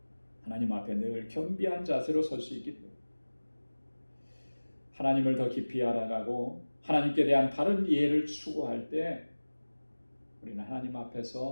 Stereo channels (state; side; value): inverted; both; correlation -1.00